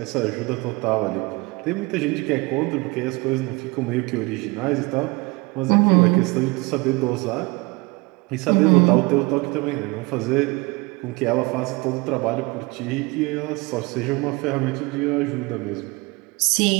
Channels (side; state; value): left; quieter; 25.5 dB